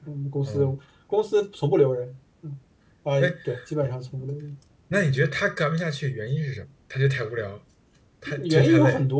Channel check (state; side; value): identical; both; correlation 1.00